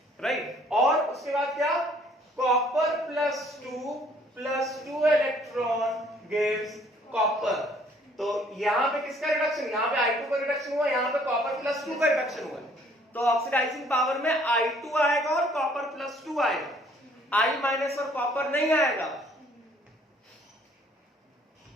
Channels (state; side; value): normal; both; correlation 0.60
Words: राइट। और उसके बाद क्या, copper plus 2 electron gives copper. तो यहां पे किसका रिडक्शन, यहां पे I2 का रिडक्शन हुआ, यहां पे कॉपर प्लस 2 का रिडक्शन हुआ, तो ऑक्सीडाइजिंग पावर में I2 आएगा और कॉपर प्लस 2 आएगा, I माइनस और कॉपर नहीं आएगा,